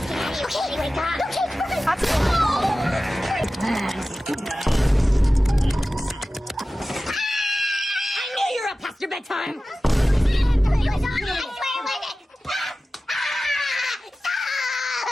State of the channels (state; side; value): normal; both; correlation 0.95